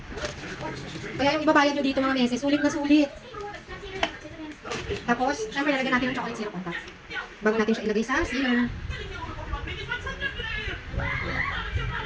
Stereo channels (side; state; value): both; identical; correlation 1.00